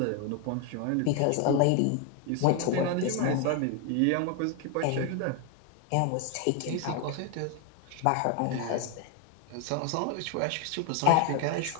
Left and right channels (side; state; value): both; different; correlation 0.01